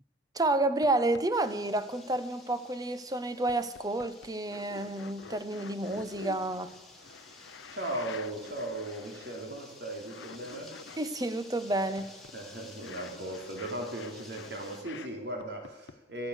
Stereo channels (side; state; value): both; normal; correlation 0.46